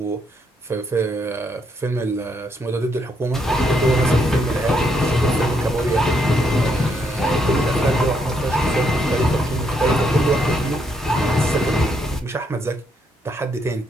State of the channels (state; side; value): normal; both; correlation 0.75